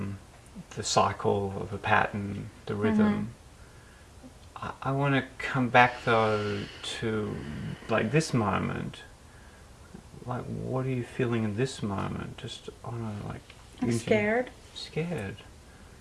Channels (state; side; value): identical; both; correlation 1.00